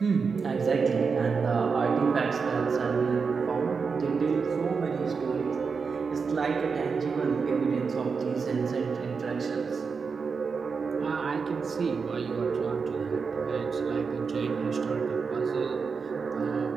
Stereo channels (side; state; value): left; quieter; 5.3 dB